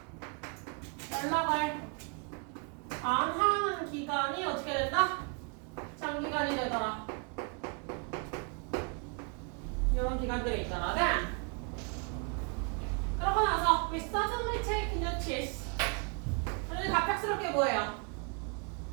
연락을 안 하는 기간이 어떻게 된다? 장기간이 되더라. 이런 기간들이 있더라. Then 그러고 나서 we suddenly take notice. 우리는 갑작스럽게 뭐예요?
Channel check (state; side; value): quieter; left; 36.0 dB